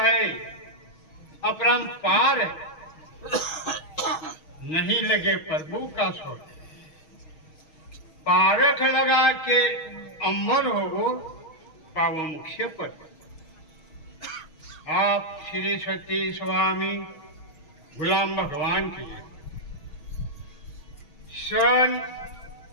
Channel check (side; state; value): right; late; 6.3 ms